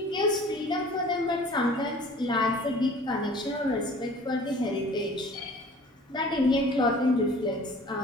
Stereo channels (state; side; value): normal; both; correlation 0.47